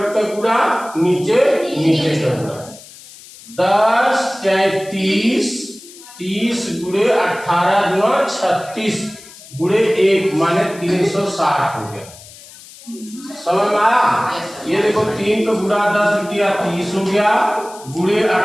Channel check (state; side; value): noise; left; hiss, 19 dB below the sound